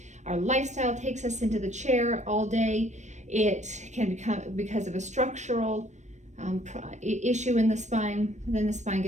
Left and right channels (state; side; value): late; left; 0.34 ms